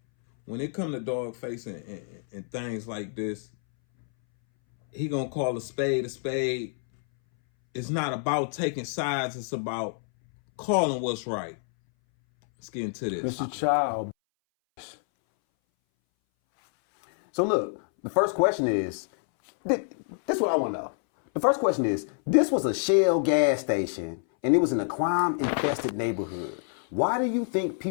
When it come to Dawgface and things like this, he gonna call a spade a spade. It's not about taking sides, it's about calling what's right. Let's get into this. Mr. Chow. So look, the first question is, this is what I want to know. The first question is, this was a Shell gas station and it was in a crime-infested neighborhood. Why do you think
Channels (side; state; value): right; silent; 60 dB below the other